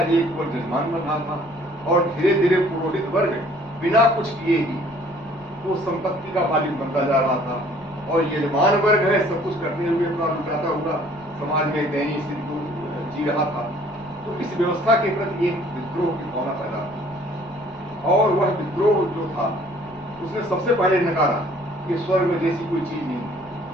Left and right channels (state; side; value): noise; left; rumble, 24 dB below the sound